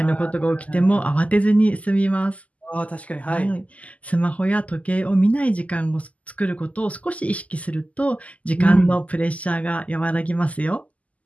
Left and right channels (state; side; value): late; right; 0.071 ms